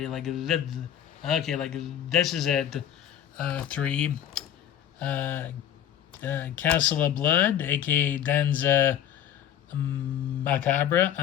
okay, like this is at 3. Uh, Castle of Blood, aka Danza Macabre.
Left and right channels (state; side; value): quieter; right; 10.4 dB